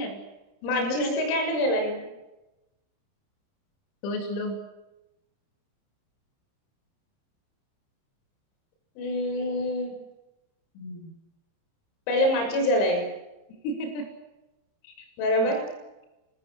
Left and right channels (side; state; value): right; late; 30 ms